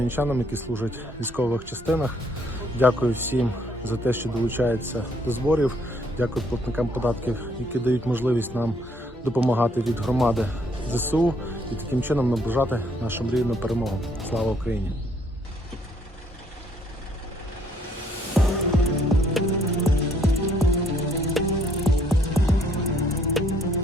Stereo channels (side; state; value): both; normal; correlation 0.66